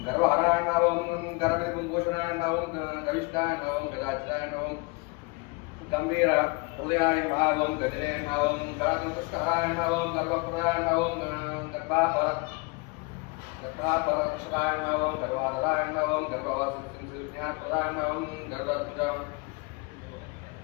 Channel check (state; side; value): quieter; right; 28.5 dB